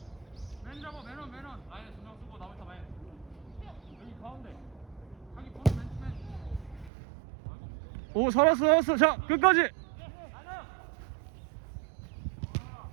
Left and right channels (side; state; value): left; drops out; at 6.9 s